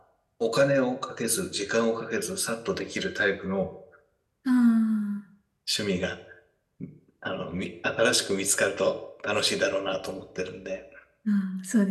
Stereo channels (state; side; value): identical; both; correlation 1.00